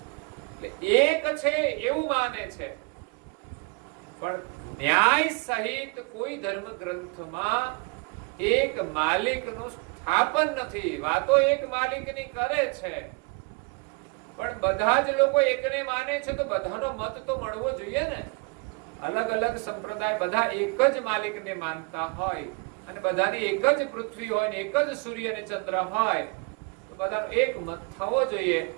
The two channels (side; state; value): left; quieter; 30.7 dB